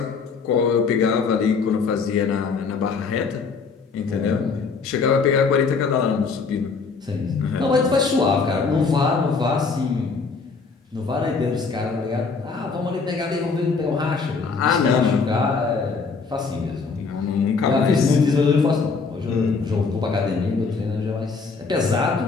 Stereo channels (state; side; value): quieter; right; 4.8 dB